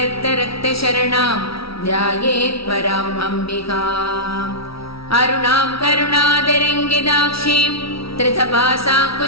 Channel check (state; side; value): late; right; 0.76 ms